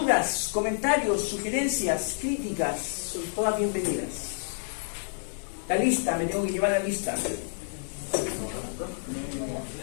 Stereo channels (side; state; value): right; silent; 56 dB below the other